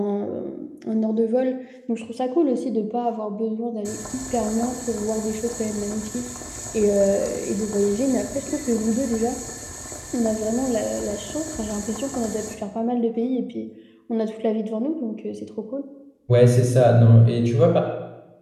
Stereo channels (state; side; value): identical; both; correlation 1.00